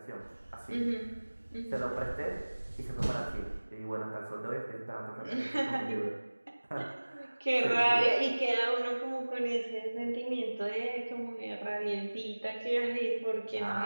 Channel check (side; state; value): both; inverted; correlation -1.00